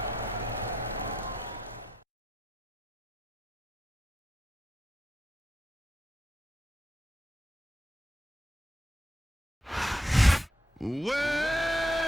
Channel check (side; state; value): both; normal; correlation 0.82